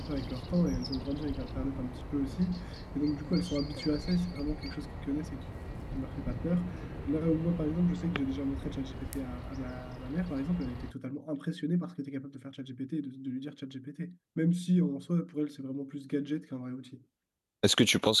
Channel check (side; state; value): both; identical; correlation 1.00